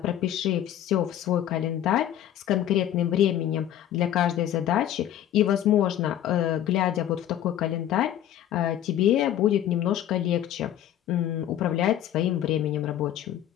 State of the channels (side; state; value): right; quieter; 11.5 dB